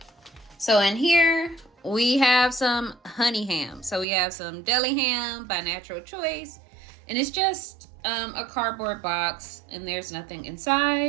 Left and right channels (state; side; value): drops out; left; at 4.0 s